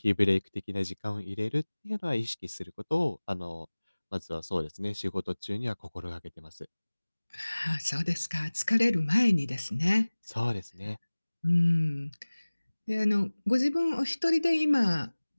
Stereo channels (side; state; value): both; inverted; correlation -1.00